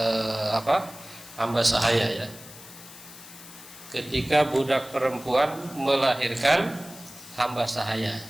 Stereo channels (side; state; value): left; noise; hiss, 17 dB below the sound